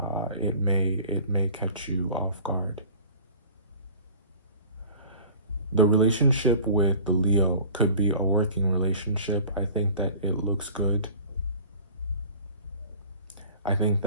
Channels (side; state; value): both; inverted; correlation -0.44